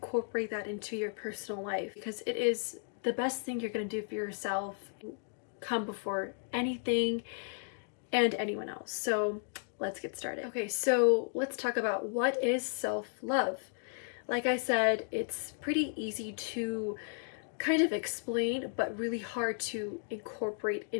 that into your personal life because it is the best thing you're going to do for yourself, come before anything and anyone else. So let's get started. Okay, so let's talk about what is self-love. Like I said, it's pretty easy to kind of explain, but really hard to incorporate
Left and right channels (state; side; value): silent; right; 55 dB below the other